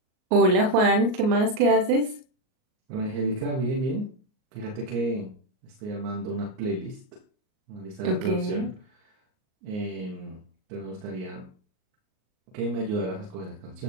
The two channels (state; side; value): late; left; 38 ms